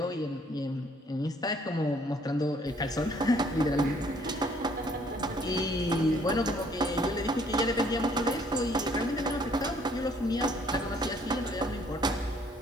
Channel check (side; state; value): both; normal; correlation 0.62